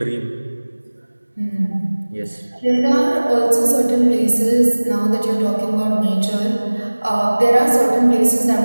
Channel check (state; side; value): inverted; both; correlation -1.00